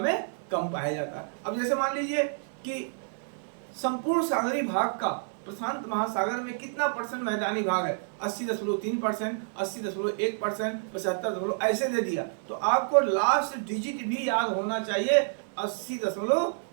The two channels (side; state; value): left; silent; digital silence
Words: में कम पाया जाता है। अब जैसे मान लीजिए कि संपूर्ण सागरीय भाग का प्रशांत महासागर में कितना परसेंट मैदानी भाग है, 80.3%, 80.1%, 75 ऐसे दे दिया, तो आपको लास्ट डिजिट भी याद होना चाहिए